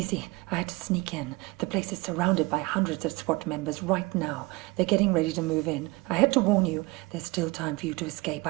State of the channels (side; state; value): left; quieter; 23.5 dB